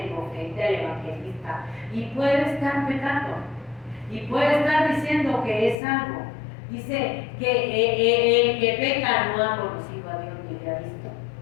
el profeta, el evangelista, y puede estar pecando. Y puede estar diciendo que es algo. Dice que el que peca no ha conocido a Dios ni le ha visto.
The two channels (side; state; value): right; drops out; at 5.8 s